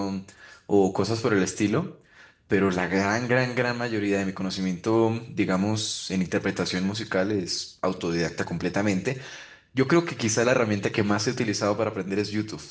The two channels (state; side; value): identical; both; correlation 1.00